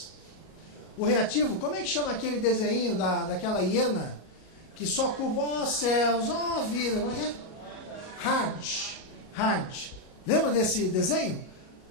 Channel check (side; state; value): right; late; 37 ms